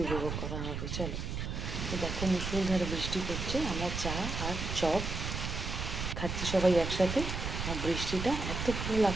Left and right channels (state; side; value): noise; right; rumble, 4 dB below the sound